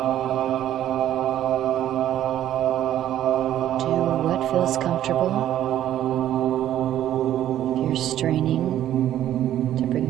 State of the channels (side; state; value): left; quieter; 12.0 dB